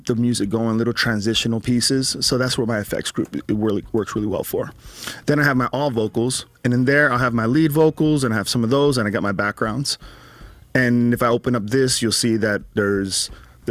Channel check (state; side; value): identical; both; correlation 1.00